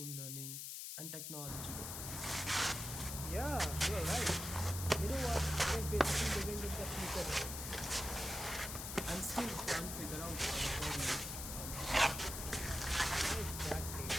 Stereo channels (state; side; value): noise; left; hiss, 6 dB below the sound